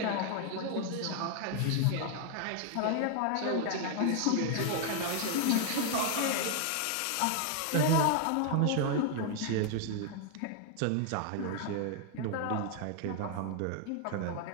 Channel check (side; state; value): both; different; correlation 0.00